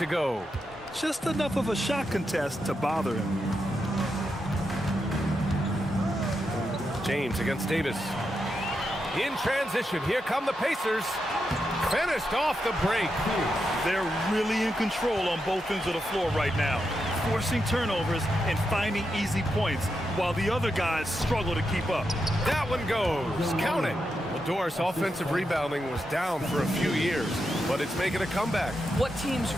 go. Just enough of a shot contest to bother him. James against Davis. In transition, here come the Pacers. Finished off the break. They're really in control on both ends of the floor right now, forcing turnovers and finding easy points while the other guys struggle to keep up. That one goes. Count it. Well, Doris' offensive rebounding was down for a few years, but it's making a comeback. What teams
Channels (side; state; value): both; normal; correlation 0.85